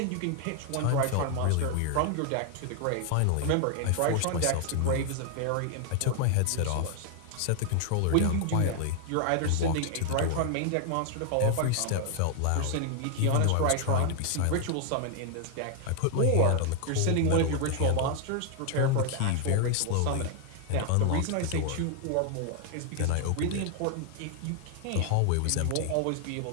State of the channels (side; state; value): both; different; correlation 0.00